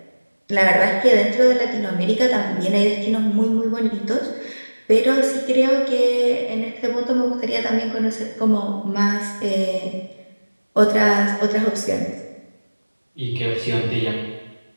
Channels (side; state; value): both; inverted; correlation -1.00